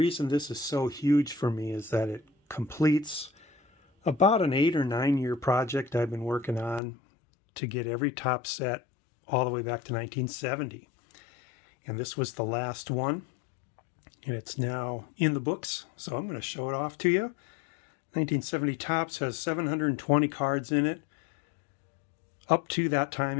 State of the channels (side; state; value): right; drops out; at 6.8 s